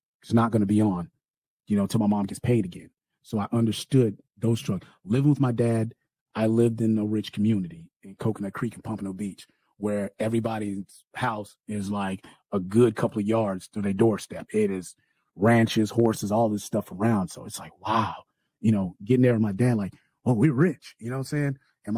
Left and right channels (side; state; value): both; identical; correlation 1.00